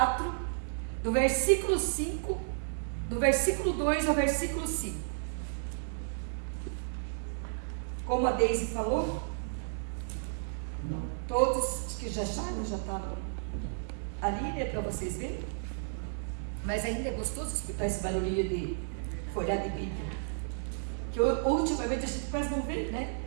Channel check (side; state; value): left; silent; 56 dB below the other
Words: do versículo 5, do versículo 2 ao versículo 5. Como a Deise falou, todos, acho que já acharam, já está ali, né, para vocês verem. Mas ainda é gostoso escutar esse barulhinho de folhar de Bíblia. Que ultimamente a gente quase não vê, né?